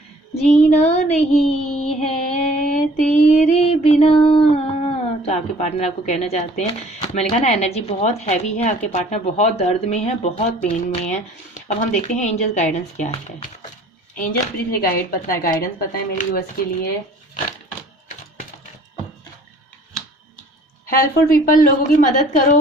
जीना नहीं है तेरे बिना। तो आपके पार्टनर आपको कहना चाहते हैं, मैंने कहा ना एनर्जी बहुत हैवी है, आपके पार्टनर बहुत दर्द में है, बहुत पेन में है। अब हम देखते हैं एंजल्स गाइडेंस क्या है। एंजल्स प्लीज गाइडेंस बताएं मेरे व्यूअर्स के लिए। हेल्पफुल पीपल, लोगों की मदद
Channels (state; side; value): normal; both; correlation 0.54